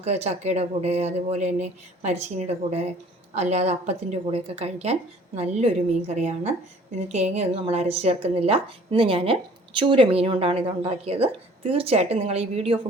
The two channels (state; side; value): normal; both; correlation 0.53